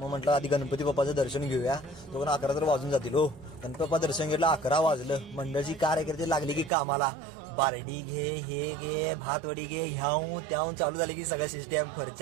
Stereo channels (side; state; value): left; drops out; at 6.7 s